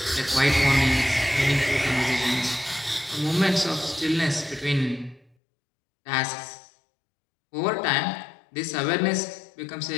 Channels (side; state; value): right; drops out; at 5.3 s